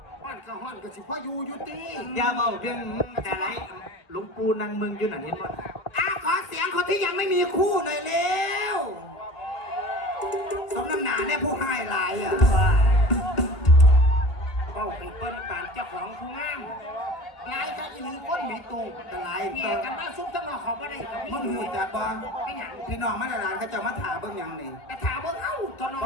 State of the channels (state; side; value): late; right; 2.2 ms